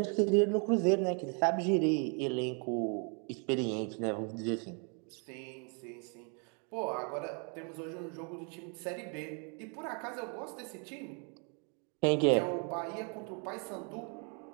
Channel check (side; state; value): left; quieter; 38.0 dB